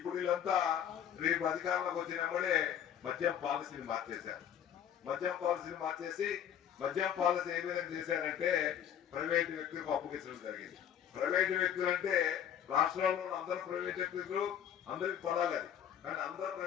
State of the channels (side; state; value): right; quieter; 9.5 dB